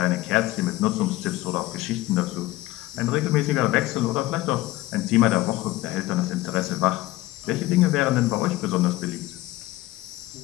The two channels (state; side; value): quieter; right; 17.8 dB